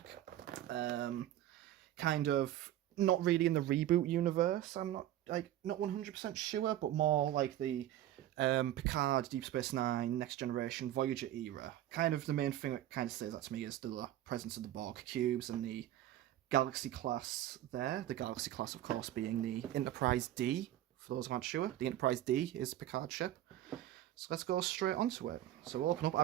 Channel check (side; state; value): left; quieter; 13.1 dB